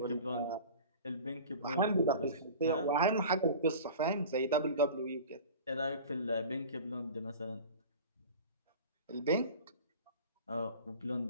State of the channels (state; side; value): inverted; both; correlation -0.38